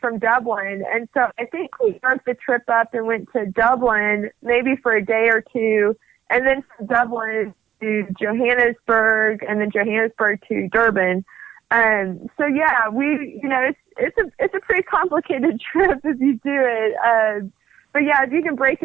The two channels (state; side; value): quieter; left; 10.5 dB